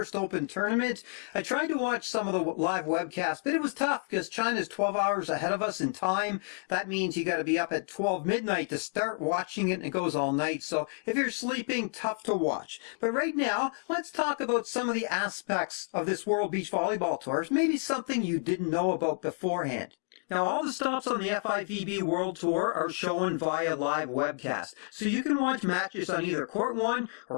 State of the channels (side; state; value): right; silent; 58 dB below the other